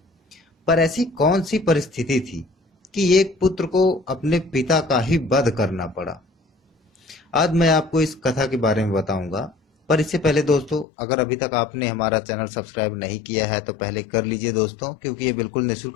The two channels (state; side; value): drops out; right; at 10.9 s